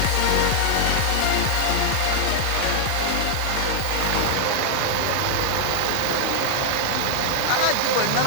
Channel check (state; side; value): different; both; correlation 0.00